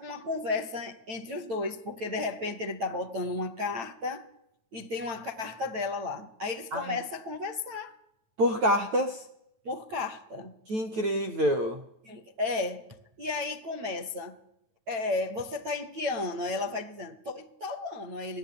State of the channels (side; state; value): left; late; 8.9 ms